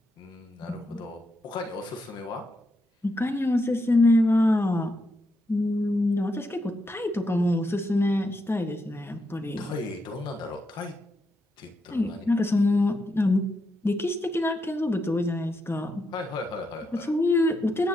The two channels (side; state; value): both; normal; correlation 0.82